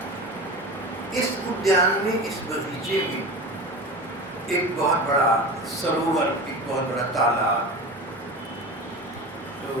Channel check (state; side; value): normal; both; correlation 0.30